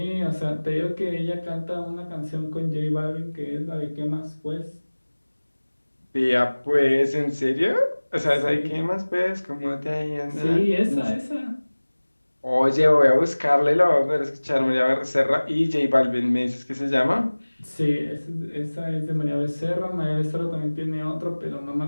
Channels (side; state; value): both; inverted; correlation -1.00